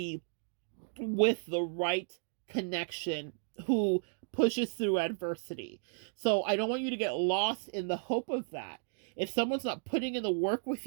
with the right connection who pushes through adversity. So I don't want you to get lost in the hope of that. If someone's not putting in the work with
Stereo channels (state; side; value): silent; left; digital silence